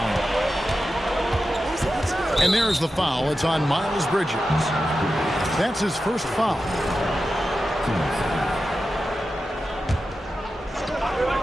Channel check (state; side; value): normal; both; correlation 0.92